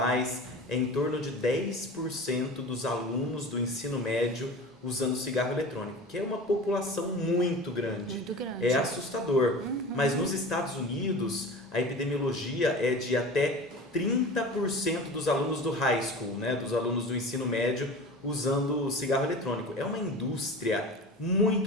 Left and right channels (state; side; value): normal; both; correlation 0.35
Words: é em torno de 10% dos alunos do ensino médio usando cigarro eletrônico, que é uma população muito grande. Muito grande. É assustador. Mas nos Estados Unidos, a epidemiologia é de até 30% dos alunos do high school, né, dos alunos do ensino médio, usando cigarro eletrônico. É uma indústria